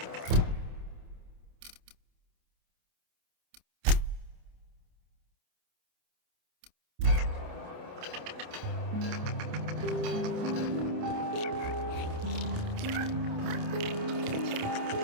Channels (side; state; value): left; late; 28 ms